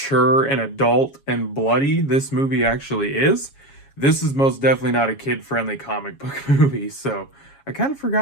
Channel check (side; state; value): right; late; 7.3 ms